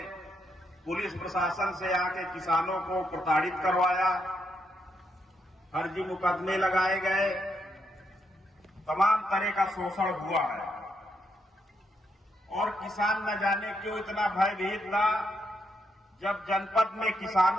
पुलिस प्रशासन से आके किसानों को प्रताड़ित करवाया, फर्जी मुकदमे लगाए गए, तमाम तरह का शोषण हुआ है। और किसान न जाने क्यों इतना भयभीत था। जब जनपद में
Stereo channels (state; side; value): normal; both; correlation 0.79